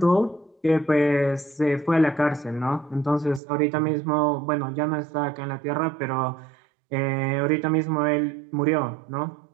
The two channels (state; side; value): drops out; left; at 3.4 s